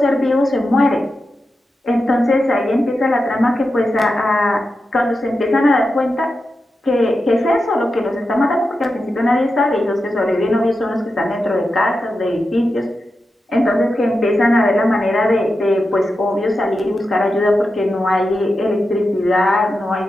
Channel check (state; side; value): normal; both; correlation 0.90